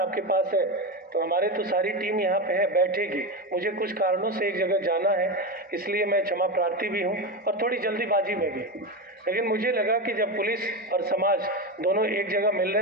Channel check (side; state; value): both; normal; correlation 0.17